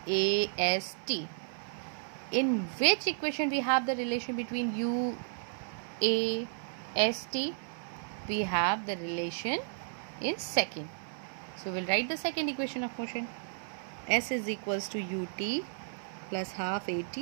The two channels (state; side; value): silent; left; 56 dB below the other